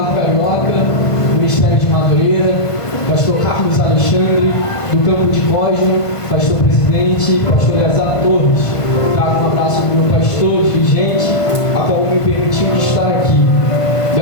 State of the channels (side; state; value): right; late; 1.5 ms